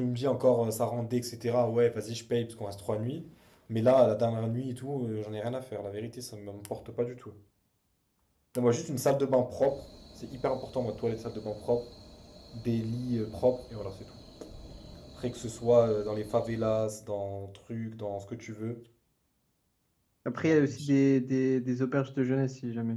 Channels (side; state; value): both; identical; correlation 1.00